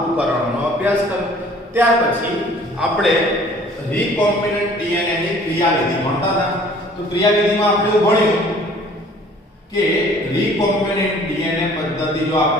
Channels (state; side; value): normal; both; correlation 0.53